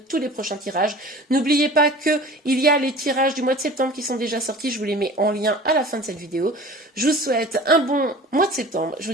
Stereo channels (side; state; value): both; normal; correlation 0.42